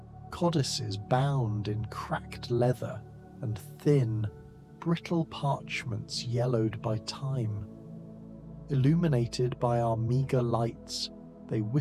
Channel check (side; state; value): both; identical; correlation 1.00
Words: codices bound in cracked leather, and thin, brittle parchments yellowed by time. Illuminated by our meagre lights, they